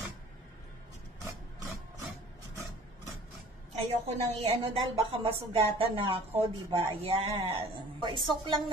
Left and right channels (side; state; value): both; normal; correlation 0.48